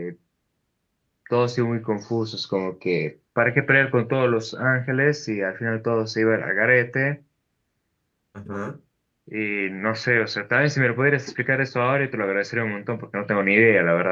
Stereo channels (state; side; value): identical; both; correlation 1.00